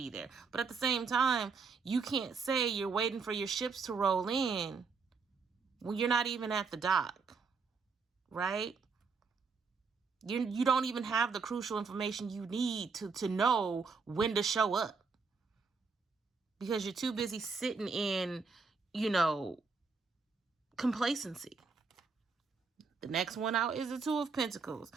there. But at the same time, you can't say you're waiting for your ships to roll in when you're not even at the dock, right? You don't even have the crucial information you need to know when to show up, because you're too busy sitting in, complacency. The next one out is the Two of Pentacles.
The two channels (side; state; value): left; quieter; 4.9 dB